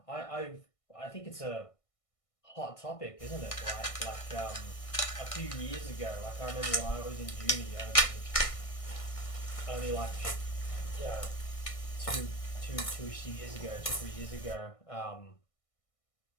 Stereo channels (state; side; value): late; right; 1.6 ms